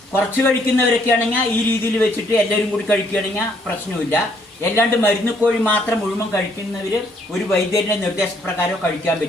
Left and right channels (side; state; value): both; normal; correlation 0.68